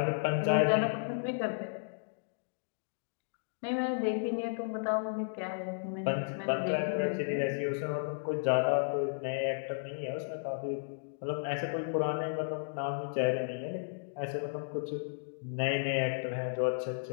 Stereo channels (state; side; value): silent; right; digital silence